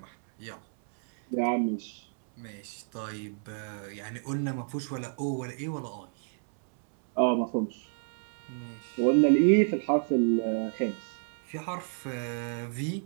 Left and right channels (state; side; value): silent; left; 58 dB below the other